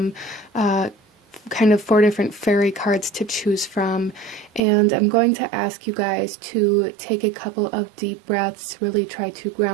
kind of 4 different fairy cards to choose from, and I'm going to ask you guys to take a couple of deep breaths, really try to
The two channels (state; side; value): drops out; left; at 4.6 s